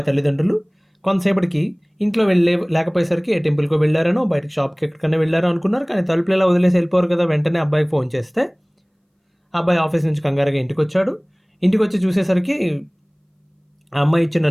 తల్లిదండ్రులు. కొంతసేపటికి ఇంట్లో లేకపోయేసరికి ఏ టెంపుల్కో వెళ్ళారనో, బయటకు షాప్కి ఎక్కడికైనా వెళ్ళారో అనుకున్నారు. కానీ తలుపులు ఎలా వదిలేసి వెళ్ళిపోరు కదా. వెంటనే అబ్బాయికి ఫోన్ చేస్తే అబ్బాయి ఆఫీస్ నుంచి కంగారుగా ఇంటికి వచ్చాడు. ఇంటికి వచ్చి చూసేసరికి ఆ అమ్మాయి ఇచ్చిన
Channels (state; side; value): identical; both; correlation 1.00